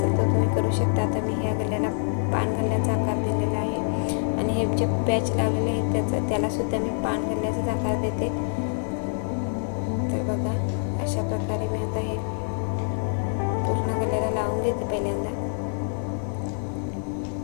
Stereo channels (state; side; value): silent; right; digital silence